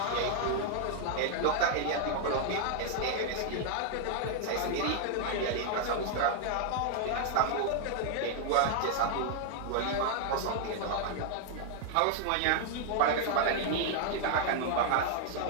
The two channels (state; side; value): different; both; correlation 0.00